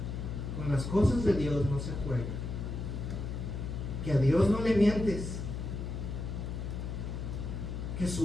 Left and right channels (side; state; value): left; noise; hum, 4 dB below the sound